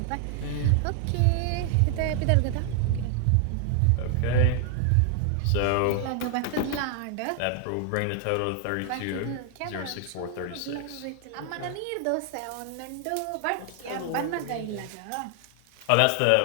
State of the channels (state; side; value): different; both; correlation 0.00